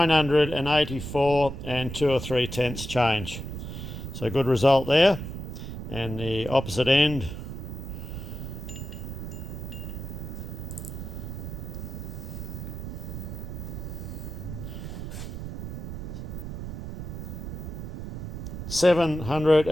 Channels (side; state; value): right; noise; rumble, 7 dB below the sound